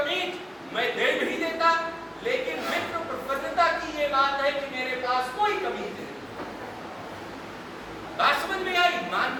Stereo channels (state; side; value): identical; both; correlation 1.00